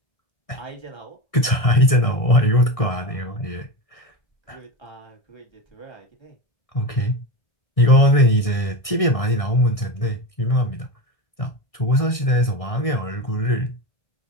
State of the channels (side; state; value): right; late; 1.6 ms